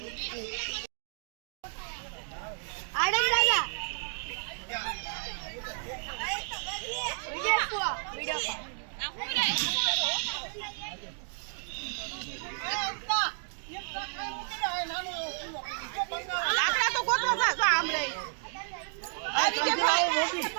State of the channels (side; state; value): left; silent; digital silence